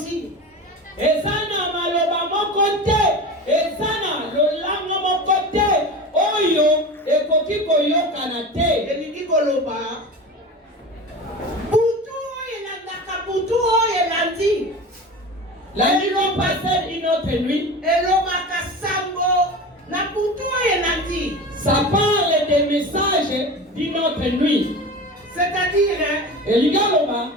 Ezana maloba mokote, ezana lolanga mokote, oyo ekoki koyokana te. Elingi koloba butu elandaka butu oyo elandi. La nuit l'ont passé une autre nuit. Elobaka sango na butu oyo elandi. Ça parle des messages d'une autre nuit. C'est-à-dire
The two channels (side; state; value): both; normal; correlation 0.31